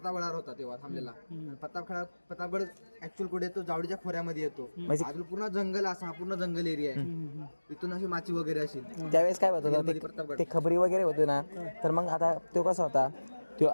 होता तेव्हा थांबलेला. आणि प्रतापगड ऍक्च्युअल कुठे येतो जावडीच्या खोऱ्यामध्ये येतो. अजून पूर्ण जंगल असा पूर्ण जंगल एरिया आहे. इथून अशी माची वगैरे अशी त्यावेळेस काय होत होतं ते खबरी वगैरे होते ना तर मग आता तो कसा होता तो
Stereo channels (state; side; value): inverted; both; correlation -1.00